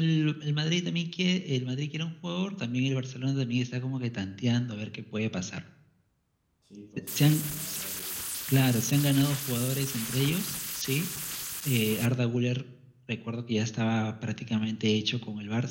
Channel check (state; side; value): identical; both; correlation 1.00